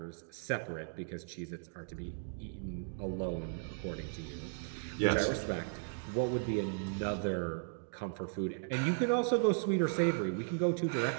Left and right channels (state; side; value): silent; left; digital silence